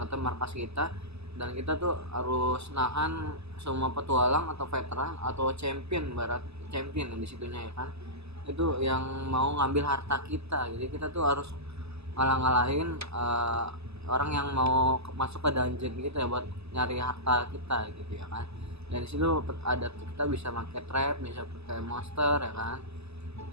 kata markas kita, dan kita tuh harus nahan semua petualang atau veteran atau champion yang di situnya ya kan, itu yang mau ngambil harta kita. Jadi kita tuh harus ngalahin orang yang mau masuk ke dungeon gitu ya, buat nyari harta kita gitu ya kan. Dan disitu ada kita bisa pakai trap, bisa pakai monster ya kan.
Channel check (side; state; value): left; late; 0.79 ms